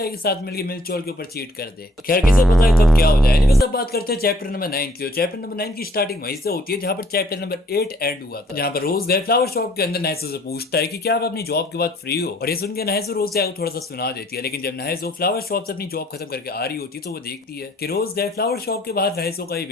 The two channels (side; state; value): both; normal; correlation 0.62